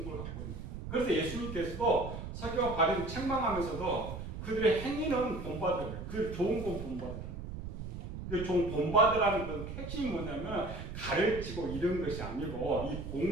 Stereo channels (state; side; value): noise; right; rumble, 8 dB below the sound